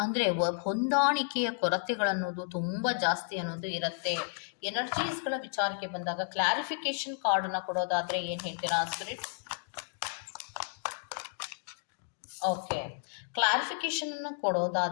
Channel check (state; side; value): silent; right; 56 dB below the other